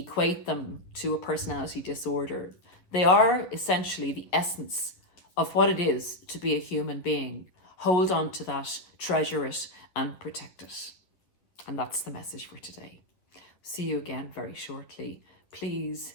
them to a personality disorder. They are essentially the essence of what it is to be a human being. Hold on to that, treasure it, and protect it. And that's the message for today. See you again very shortly. Please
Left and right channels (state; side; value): late; right; 10 ms